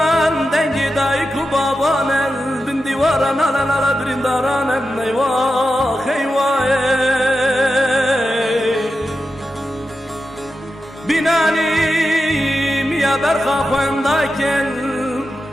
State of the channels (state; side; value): normal; both; correlation 0.90